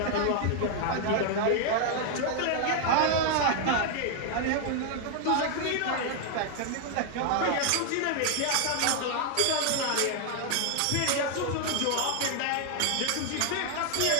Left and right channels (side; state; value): both; different; correlation 0.00